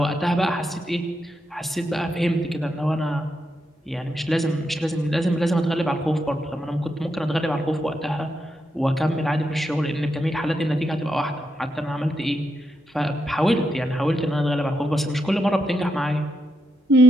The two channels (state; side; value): normal; both; correlation 0.82